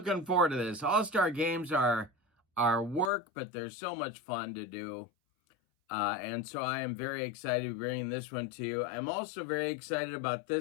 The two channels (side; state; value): right; drops out; at 3.1 s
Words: forward to this. All-Star games are work, but they're so much fun to do. And so I am very excited to be bringing this one to you. I'm also very excited about